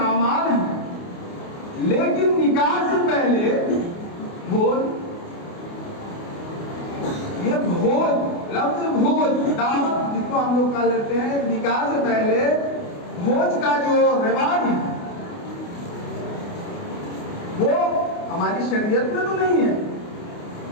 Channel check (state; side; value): late; right; 28 ms